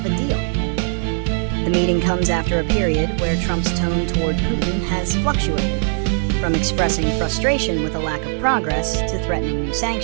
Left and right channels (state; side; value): silent; left; 63 dB below the other